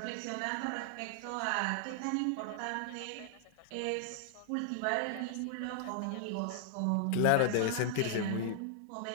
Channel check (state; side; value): different; both; correlation 0.00